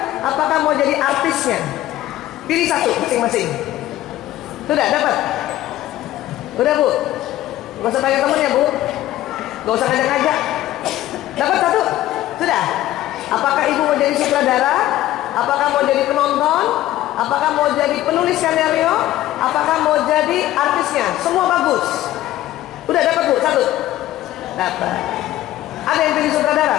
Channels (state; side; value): quieter; right; 14.6 dB